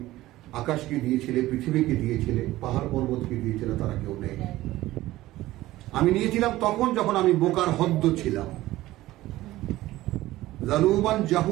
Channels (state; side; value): quieter; left; 16.6 dB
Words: আকাশকে দিয়েছিলে, পৃথিবীকে দিয়েছিলে, পাহাড় পর্বতকে দিয়েছিলে, তারা কেউ নেই। আমি নিয়েছিলাম তখন যখন আমি বোকার হদ্দ ছিলাম, জালুমান